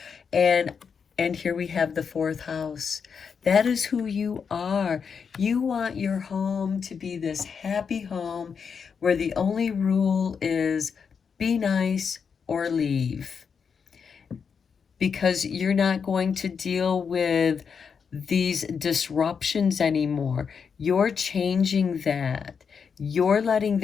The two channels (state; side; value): quieter; right; 6.3 dB